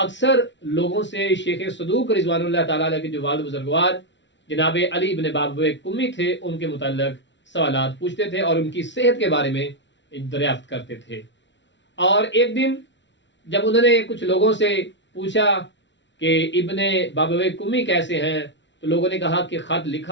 لوگوں سے شیخ صدوق رضوان اللہ تعالی علیہ کے جو والد بزرگوار جناب علی بن بابویہ کمی تھے ان کے متعلق سوالات پوچھتے تھے اور ان کی صحت کے بارے میں دریافت کرتے تھے. اور ایک دن جب انہوں نے کچھ لوگوں سے پوچھا کہ ابن بابویہ کمی کیسے ہیں، تو لوگوں نے کہا کہ خط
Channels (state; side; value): late; right; 0.53 ms